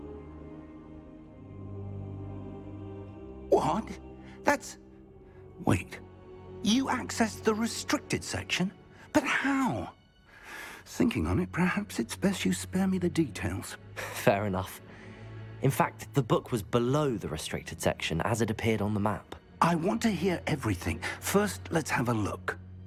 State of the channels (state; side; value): identical; both; correlation 1.00